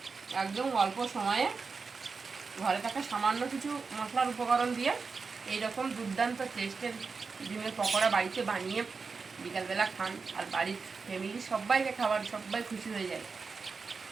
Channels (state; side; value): quieter; left; 4.8 dB